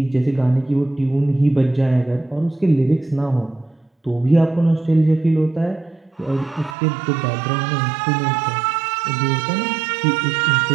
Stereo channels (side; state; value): left; drops out; at 6.8 s